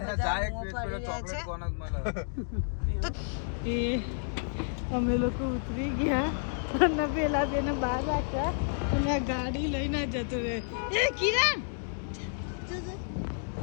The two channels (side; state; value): right; silent; digital silence